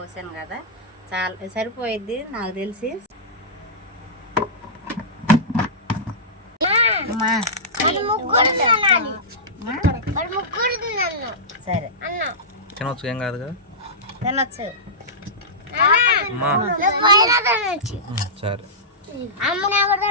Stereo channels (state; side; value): normal; both; correlation -0.15